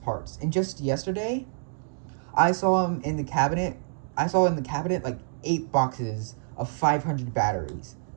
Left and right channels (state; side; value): silent; left; digital silence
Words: And just yesterday, I saw him in the cabinet. I saw in the cabinet like 8 boxes of 500 batteries.